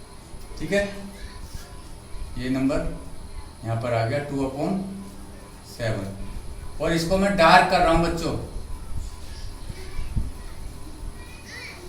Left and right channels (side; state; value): both; identical; correlation 1.00